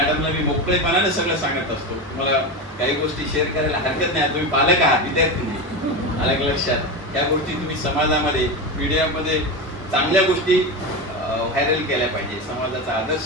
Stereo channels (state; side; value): normal; both; correlation 0.19